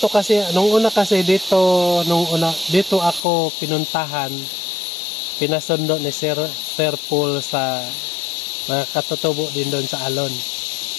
kasi, nung una dito ako pinuntahan, pinasundo ni Sir Paul sa mga katutubo din doon sa Alon.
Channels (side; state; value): right; drops out; at 3.2 s